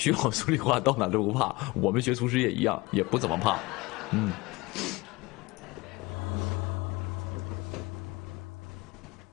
好数理化，到哪都不怕。我们学厨师也一样，也不怎么怕，嗯。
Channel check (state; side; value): quieter; right; 22.8 dB